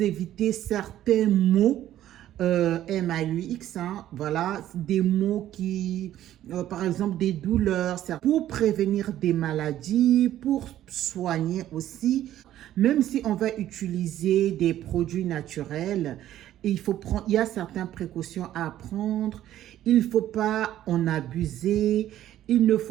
éviter certains maux. MAUX, hein, voilà, des mots qui, par exemple, des douleurs, pour prévenir des maladies, pour soigner aussi. Même si on va utiliser des produits naturels, il y a certaines précautions à prendre. Il ne faut pas en abuser. Il ne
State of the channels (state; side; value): quieter; left; 12.6 dB